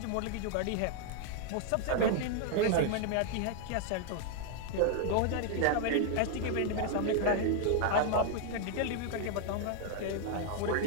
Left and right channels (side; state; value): both; different; correlation 0.00